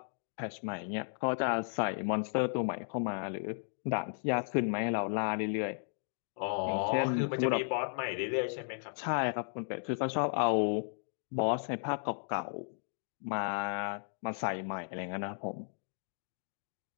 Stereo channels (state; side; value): silent; right; digital silence